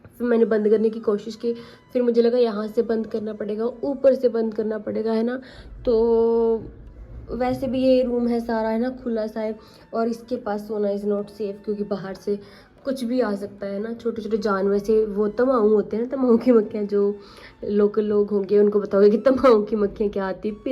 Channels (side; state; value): both; identical; correlation 1.00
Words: फिर मैंने बंद करने की कोशिश की। फिर मुझे लगा यहाँ से बंद करना पड़ेगा, ऊपर से बंद करना पड़ेगा, है ना। तो वैसे भी ये रूम है सारा, है ना, खुला सा है। और इसके पास सोना इज़ नॉट सेफ़, क्योंकि बाहर से कुछ भी आ सकता है ना। छोटे छोटे जानवर से वो तम्बाऊ होते हैं ना, तम्बाऊ की मक्खियाँ, जो लोकल लोग होंगे उनको बताओगे कि तम्बाऊ की मक्खियाँ क्या आती है,